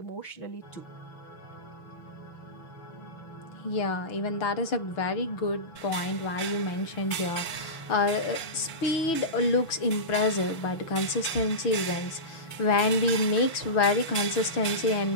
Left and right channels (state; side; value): late; right; 6.1 ms